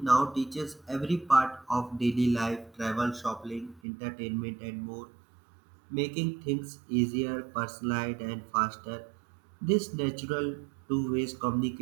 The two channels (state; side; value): drops out; left; at 3.8 s